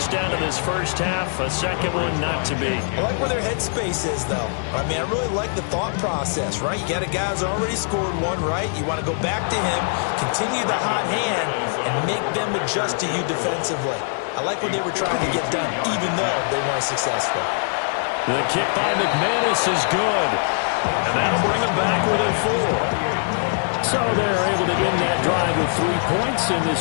in this 1st half. A 2nd one not to be. I like where their headspace is, though. I mean, I really like the thought process, right? You got a guy who's already scored 1, right? You want to go back to him, continue the hot hand, and make them adjust to you defensively. I like what they were trying to get done, even though they weren't successful. The kick by McManus is good. And that'll bring them back within 4. So they're able to end that drive with 3 points in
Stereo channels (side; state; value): right; silent; digital silence